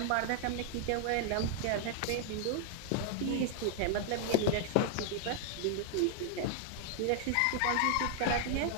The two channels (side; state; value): both; different; correlation 0.00